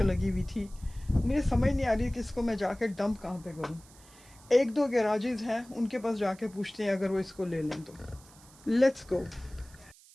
लगी हुई थी। मुझे समझ नहीं आ रही कि इसको मैं जाके डंप कहाँ पे करूँ। 1-2 गैराजेस हैं, उनके पास जाके पूछते हैं अगर वो इसको ले लें तो। Let's go.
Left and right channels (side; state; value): right; noise; hiss, 24 dB below the sound